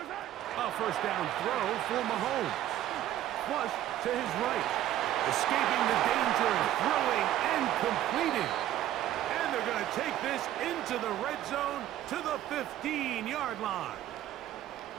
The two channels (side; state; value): left; quieter; 12.8 dB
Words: A 1st down throw for Mahomes. Flush to his right. Escaping the danger, throwing and completing. And they're going to take this into the red zone to the 15-yard line.